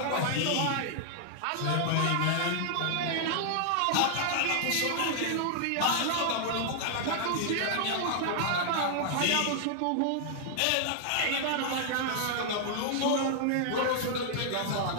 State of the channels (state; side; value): different; both; correlation -0.01